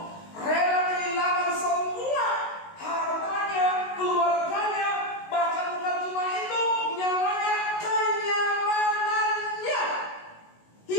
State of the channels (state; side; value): late; right; 19 ms